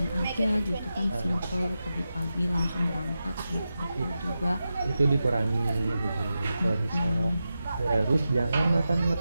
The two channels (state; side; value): inverted; both; correlation -0.91